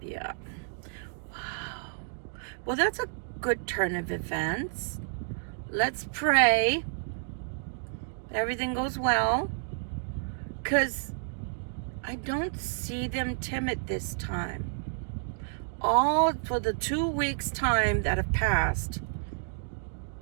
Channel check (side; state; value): left; silent; digital silence